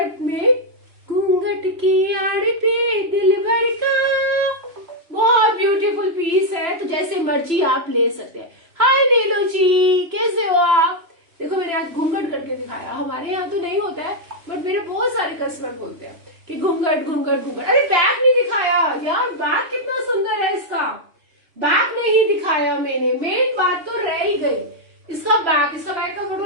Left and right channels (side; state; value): left; late; 3.1 ms